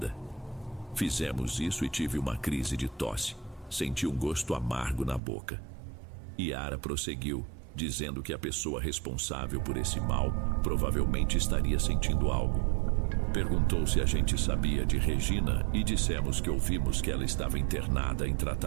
Fizemos isso e tive uma crise de tosse. Senti um gosto amargo na boca. Yara prosseguiu, dizendo que a pessoa responsável por esse mal provavelmente estaria sentindo algo. Perguntou se a gente sabia de Regina e dissemos que ouvimos que ela estava internada em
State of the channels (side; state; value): left; drops out; at 5.2 s